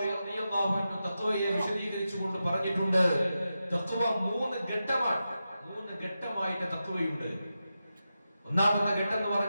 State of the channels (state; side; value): inverted; both; correlation -0.90